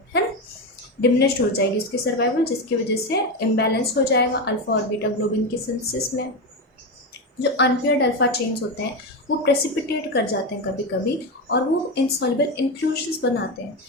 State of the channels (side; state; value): both; normal; correlation 0.15